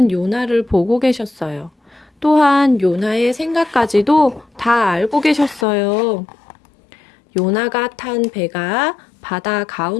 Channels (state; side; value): drops out; right; at 5.7 s